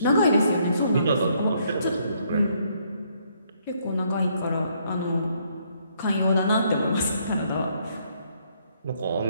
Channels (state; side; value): inverted; both; correlation -0.70